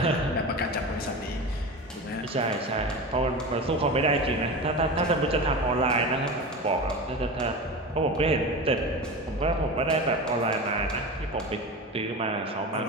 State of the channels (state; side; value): normal; both; correlation 0.27